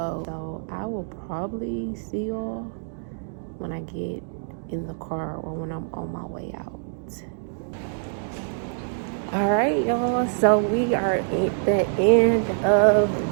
So I will probably see y'all when I get in the car or when I'm on my way out. All right, y'all, so we are at the end of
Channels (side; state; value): left; silent; digital silence